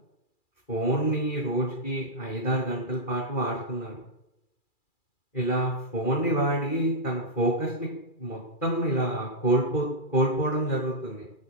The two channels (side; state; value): right; late; 2.4 ms